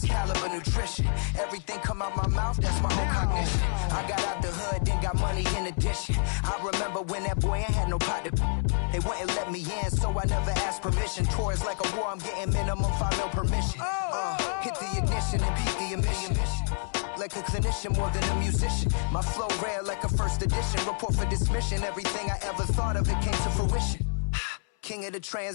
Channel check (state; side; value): silent; right; 59 dB below the other